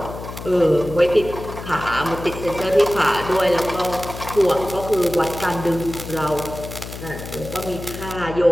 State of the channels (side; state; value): left; noise; hum, 11 dB below the sound